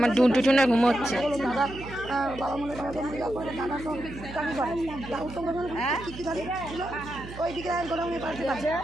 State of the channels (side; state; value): right; noise; hum, 13 dB below the sound